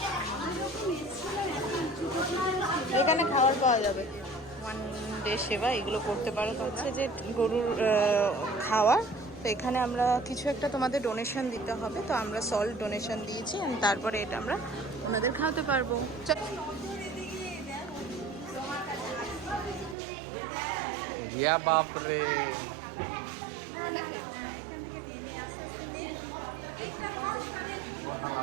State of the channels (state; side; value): drops out; left; at 20.0 s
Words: এখানে খাবার পাওয়া যাবে, ওয়ান ডে সেবা, এগুলো করতে পারো। তো হচ্ছে যে গরুর খাওয়ার, তো এখানে আমরা কিছু একটা তোমাদের ডোনেশন দিতে হবে, তো আমরা সল্ট ডোনেশন দিয়েছি, and তারপরে এটা আমরা ওনাদের খাওয়াতে পারবো। ইয়া বাপ রে,